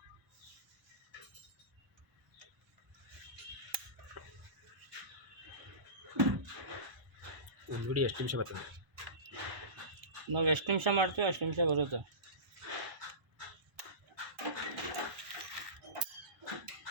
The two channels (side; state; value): left; late; 1.0 ms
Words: ಒಂದು ವಿಡಿಯೋ ಎಷ್ಟು ನಿಮಿಷ ಬರ್ತದೆ? ನಾವು ಎಷ್ಟು ನಿಮಿಷ ಮಾಡ್ತೀವಿ ಅಷ್ಟು ನಿಮಿಷ ಬರುತ್ತೆ.